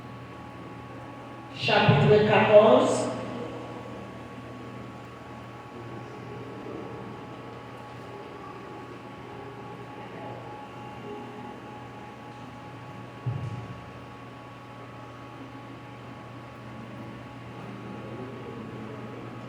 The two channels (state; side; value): identical; both; correlation 1.00